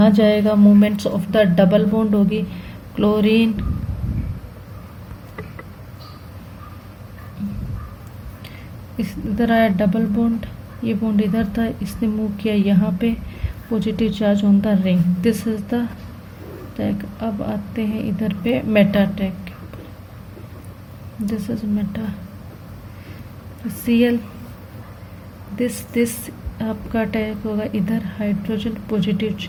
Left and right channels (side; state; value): both; identical; correlation 1.00